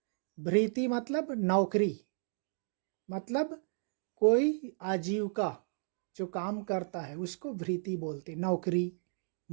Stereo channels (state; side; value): silent; left; digital silence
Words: भृति मतलब नौकरी, मतलब कोई आजीविका जो काम करता है उसको भृति बोलते। नौकरी,